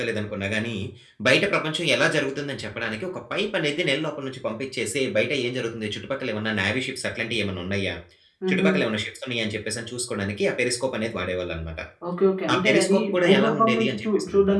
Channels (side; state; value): both; identical; correlation 1.00